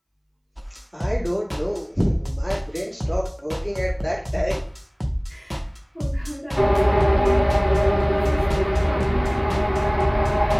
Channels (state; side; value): identical; both; correlation 1.00